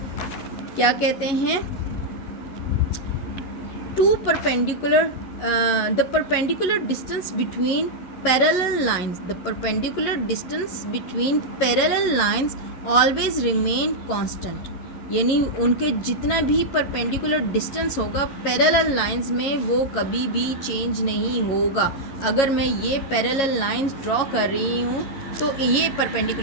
क्या कहते हैं, the perpendicular distance between parallel lines, the perpendicular distance between parallel lines always remain constant. यानी उनके जितना भी परपेंडिकुलर डिस्टेंस होगा पैरेलल लाइंस में वो कभी भी चेंज नहीं होगा। अगर मैं ये पैरेलल लाइंस ड्रॉ कर रही हूँ तो ये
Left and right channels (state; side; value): late; right; 11 ms